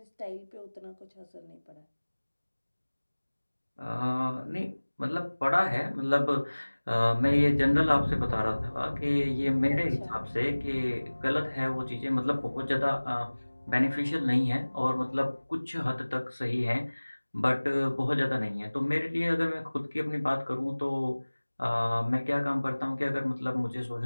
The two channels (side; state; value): both; inverted; correlation -1.00